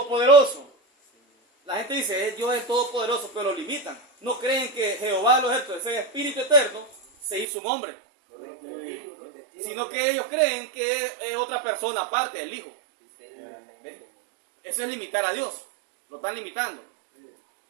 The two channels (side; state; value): left; drops out; at 7.5 s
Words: La gente dice, Dios es el Todopoderoso, pero lo limitan. No creen que Jehová de los ejércitos, ese espíritu eterno, se hizo un hombre. Correcto. Sino que ellos creen que es otra persona aparte del Hijo. ¿Ven? Eso es limitar a Dios. Lo están limitando.